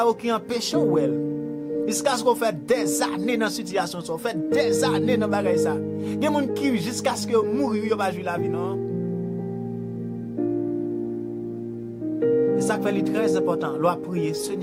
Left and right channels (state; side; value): identical; both; correlation 1.00